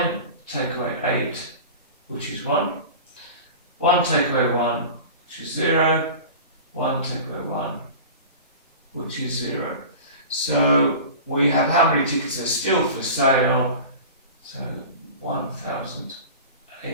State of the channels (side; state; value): both; inverted; correlation -0.35